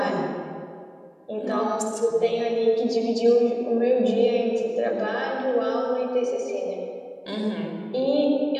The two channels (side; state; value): both; identical; correlation 1.00